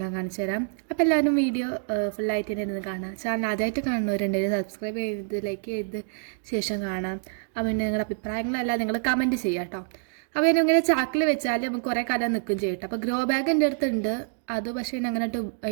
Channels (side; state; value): left; silent; digital silence